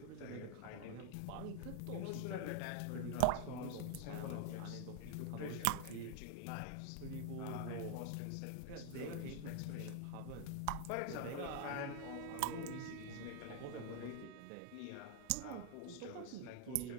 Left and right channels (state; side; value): different; both; correlation 0.00